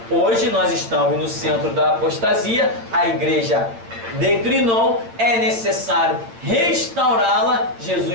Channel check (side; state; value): left; late; 8.8 ms